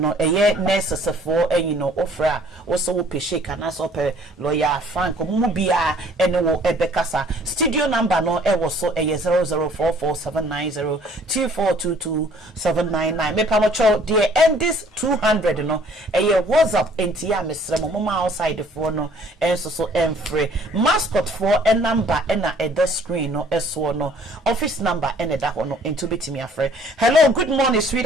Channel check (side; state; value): both; normal; correlation 0.57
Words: eye nurses for no ofra wo so wo pe shake anase wo pe lawyer Frank mu bia ene wo ebekasa studio number no e wo so eye 004479024227999 me pa mo cho de end this 200 no eye WhatsApp enti ya mesre mo ma outside for no enso so mascot for a number and the screen no eso no office number and that one into bitimi afre. Hello, good morning,